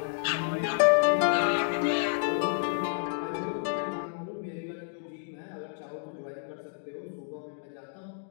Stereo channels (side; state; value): right; silent; digital silence